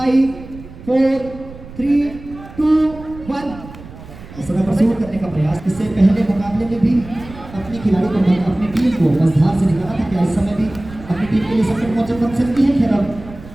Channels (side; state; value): right; noise; rumble, 16 dB below the sound